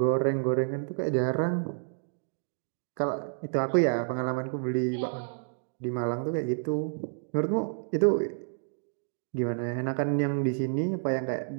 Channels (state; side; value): silent; left; digital silence